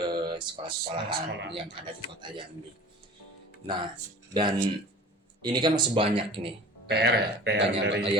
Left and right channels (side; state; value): both; normal; correlation 0.42